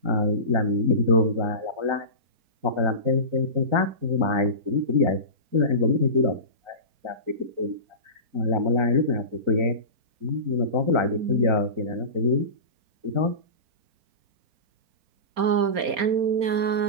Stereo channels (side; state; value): left; late; 4.3 ms